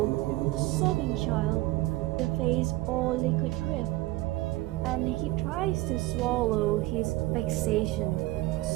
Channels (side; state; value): left; quieter; 18.8 dB